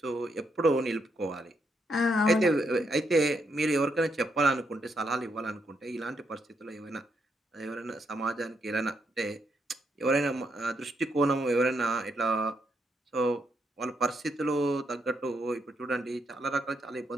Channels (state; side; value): normal; both; correlation 0.78